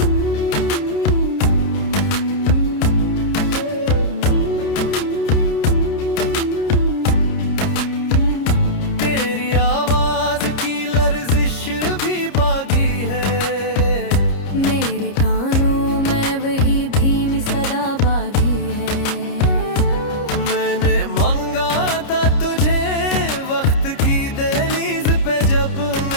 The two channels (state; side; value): late; right; 30 ms